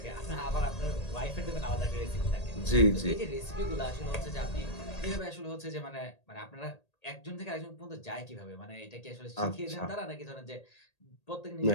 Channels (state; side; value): late; right; 1.8 ms